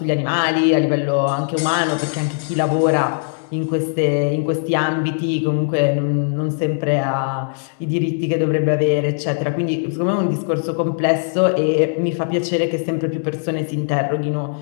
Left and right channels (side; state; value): right; silent; 66 dB below the other